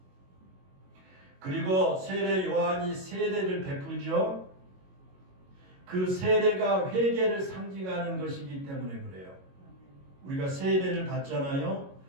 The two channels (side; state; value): left; late; 22 ms